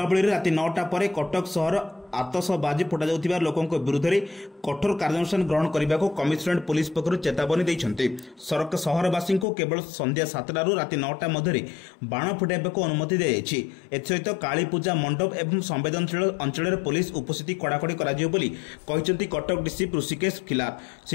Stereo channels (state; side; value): drops out; right; at 9.5 s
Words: राति 9टा पर कटक सहर आतशबाजी फुटा जाउथिबा लोकों विरुद्ध में कठोर कार्यानुष्ठान ग्रहण करने को कमिशनरेट पुलिस पक्षर चेतावनी देइछन्ते। सहरवासी को केवल संध्या 7टा रु राति 9टा मध्य बाण फुटाइबा अनुमति दी जाइछि। एसहित काली पूजा मंडप एवं संवेदनशील अंचल पुलिस उपस्थिति कड़ाकड़ी कहिसेंति कटक डीसी ऋषिकेश खिलार।